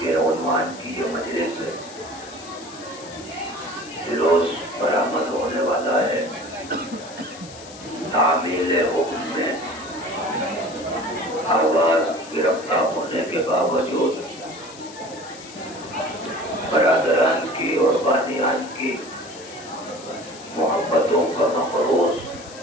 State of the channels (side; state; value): left; noise; hiss, 17 dB below the sound